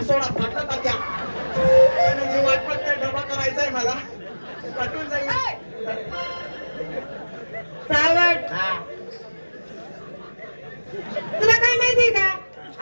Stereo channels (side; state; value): both; inverted; correlation -1.00